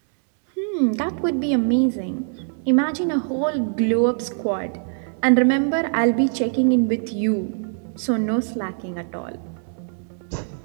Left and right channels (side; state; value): left; silent; 61 dB below the other